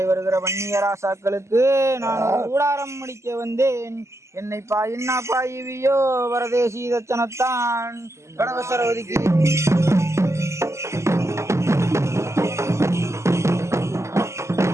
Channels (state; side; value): late; left; 0.13 ms